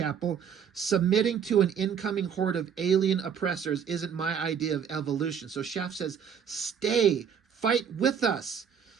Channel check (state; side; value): quieter; left; 7.6 dB